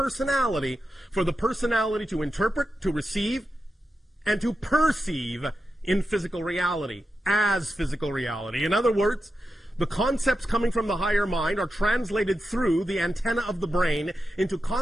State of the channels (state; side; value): normal; both; correlation 0.89